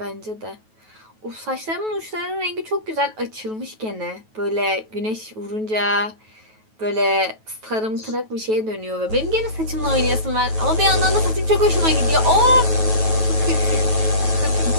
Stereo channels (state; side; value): late; left; 9.2 ms